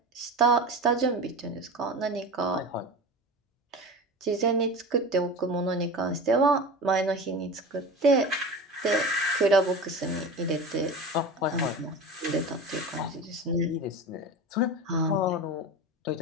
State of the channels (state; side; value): normal; both; correlation 0.30